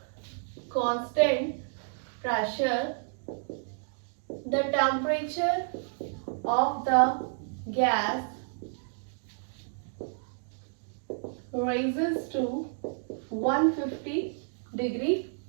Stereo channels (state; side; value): silent; left; digital silence